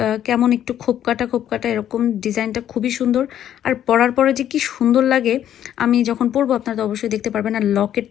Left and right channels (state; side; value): quieter; right; 10.7 dB